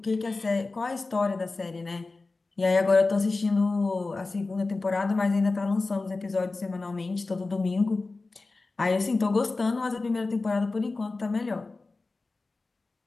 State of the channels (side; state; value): right; quieter; 3.6 dB